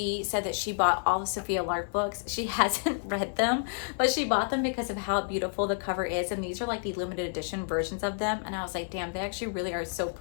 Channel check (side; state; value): right; silent; digital silence